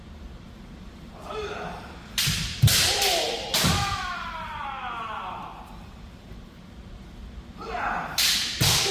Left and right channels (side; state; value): both; identical; correlation 1.00